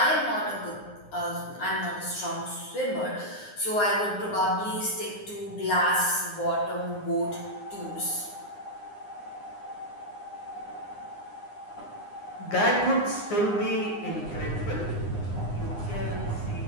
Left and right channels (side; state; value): right; late; 9.7 ms